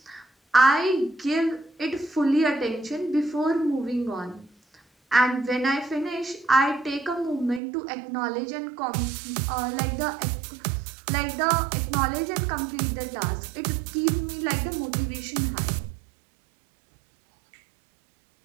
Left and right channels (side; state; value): left; drops out; at 7.6 s